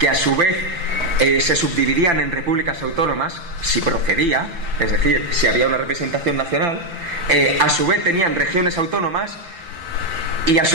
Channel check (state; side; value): late; left; 5.9 ms